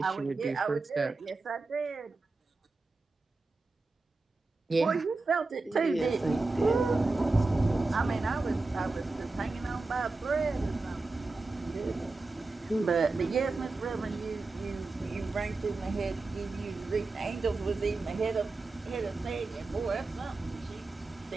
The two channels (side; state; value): left; quieter; 3.5 dB